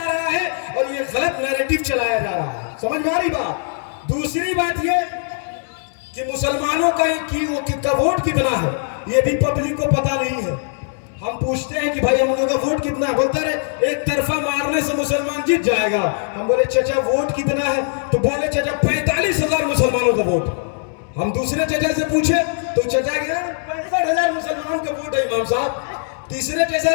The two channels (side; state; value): right; silent; 65 dB below the other